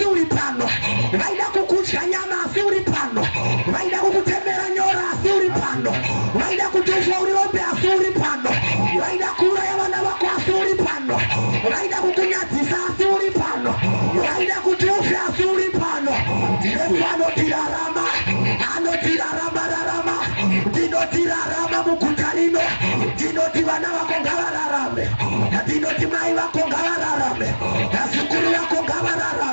uri pano. Vaida kukudya nyama asi uri pano. Vaida kukutemera nyora asi uri pano. Vaida kutofa uri hombe asi kukunyadzisa asi uri pano, waida kuti ufe asi uri pano. Yesu anotirarama, rarama, ndinotirarama muguta rino, ndinoti vana vako ngavararame, ndinoti mai vako ngavararame, nazukuru vako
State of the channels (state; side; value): inverted; both; correlation -1.00